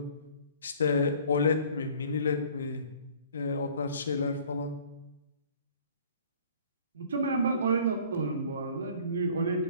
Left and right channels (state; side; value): inverted; both; correlation -0.53